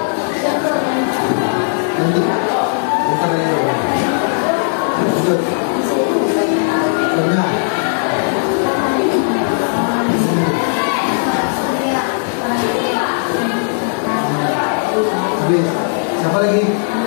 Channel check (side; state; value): right; silent; 69 dB below the other